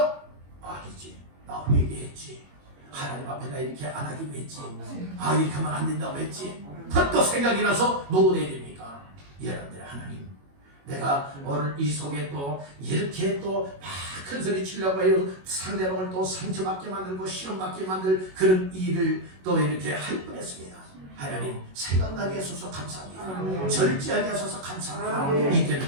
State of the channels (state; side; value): late; left; 21 ms